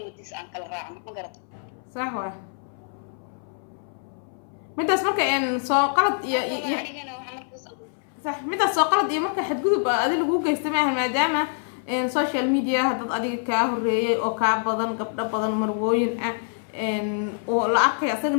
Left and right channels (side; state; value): right; silent; 61 dB below the other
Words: wadis aan kala raacno ma garato sax waa midaas marka soo qalad iyo anigana waxa markaas sax midaas soo qalad iyo marka xadgudub adiga lagu geysto maahan maadaama social media dad adiga kaa horeeyay oo kaa badan gabdho badan marwooyin ah oo la arkay asaga